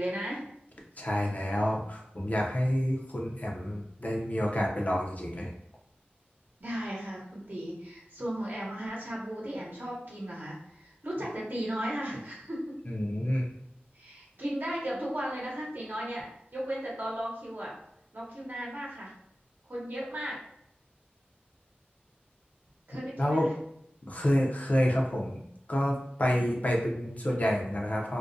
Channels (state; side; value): normal; both; correlation 0.95